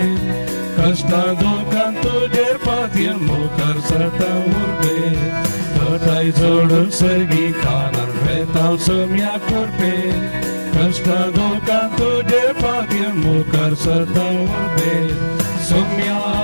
कष्टा दुखान तुजेर पातयेन मुखार सरता उर्बे घटाय जोडून सर्गी कानान वेतां सोम्या कुर्बे कष्टा दुखान तुजेर पातयेन मुखार सरता उर्बे सोम्या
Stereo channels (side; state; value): both; inverted; correlation -1.00